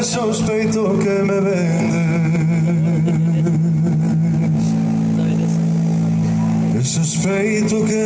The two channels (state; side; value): identical; both; correlation 1.00